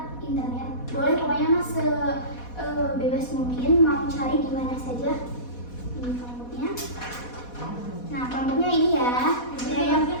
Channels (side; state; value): right; late; 4.1 ms